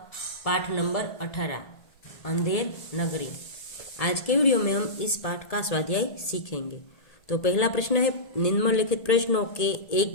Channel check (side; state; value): right; late; 1.8 ms